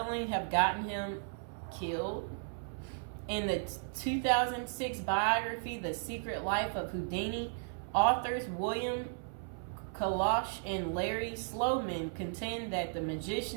have gotten him killed? In the 2006 biography, The Secret Life of Houdini, authors William Kalash and Larry Sloman contend that the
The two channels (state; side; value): silent; left; 54 dB below the other